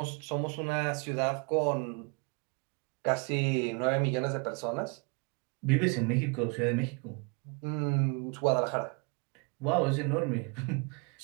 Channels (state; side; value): quieter; left; 33.8 dB